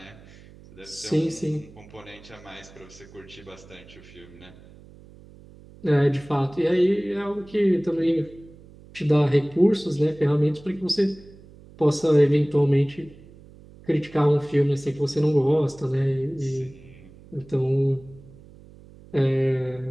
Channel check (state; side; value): noise; right; hum, 22 dB below the sound